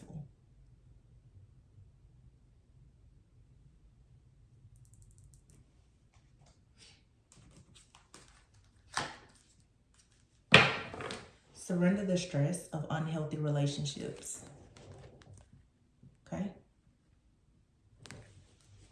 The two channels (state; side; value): identical; both; correlation 1.00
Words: Surrender the stress of unhealthy relationships. Okay?